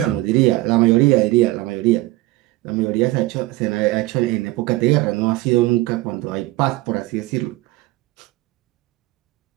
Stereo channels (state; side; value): quieter; left; 19.0 dB